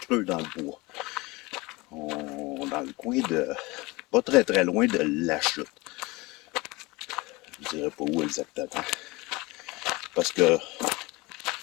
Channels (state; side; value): quieter; right; 23.3 dB